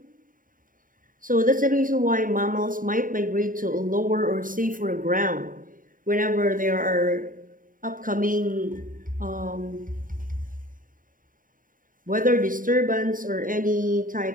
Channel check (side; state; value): left; late; 0.40 ms